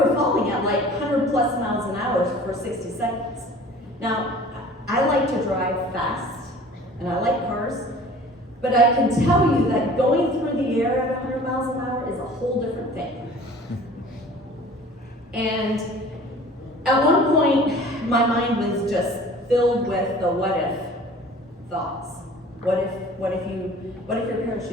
falling at like 100 plus miles an hour for 60 seconds. Now, I like to drive fast, and I like cars, but I can tell you that going through the air at 100 miles an hour is a whole different thing. And at one point, my mind was just filled with the what if thoughts. What if your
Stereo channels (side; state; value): both; normal; correlation 0.46